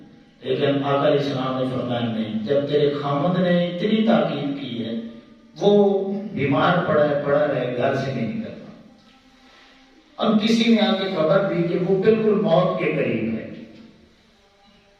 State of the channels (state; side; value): identical; both; correlation 1.00